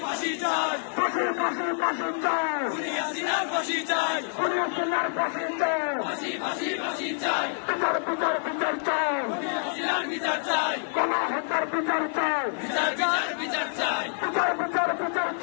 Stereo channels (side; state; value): right; silent; digital silence